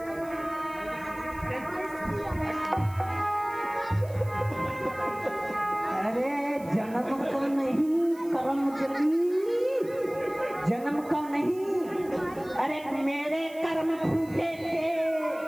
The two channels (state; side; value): noise; right; hiss, 23 dB below the sound